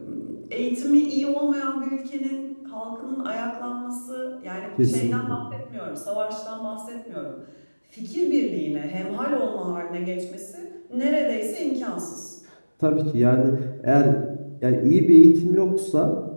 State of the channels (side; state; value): both; inverted; correlation -1.00